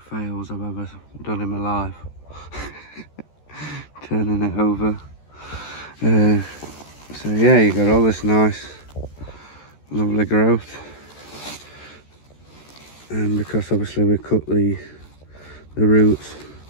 fails I've ever done in my life. Turning it over. So yeah, you got all this nice, lovely growth. And because obviously we cut the roots,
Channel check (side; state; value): right; late; 14 ms